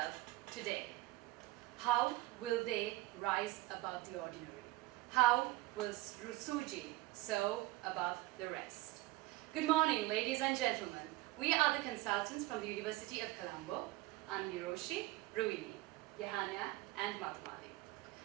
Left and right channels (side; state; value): left; quieter; 19.1 dB